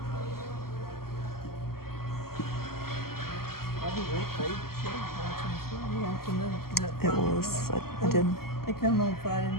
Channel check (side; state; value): right; late; 0.93 ms